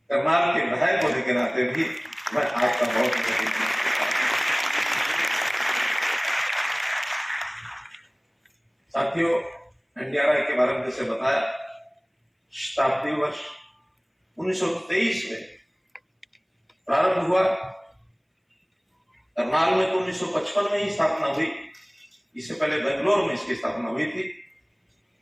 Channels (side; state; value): both; identical; correlation 1.00